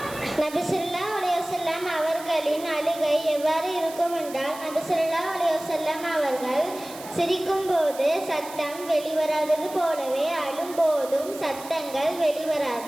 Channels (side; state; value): right; noise; hiss, 15 dB below the sound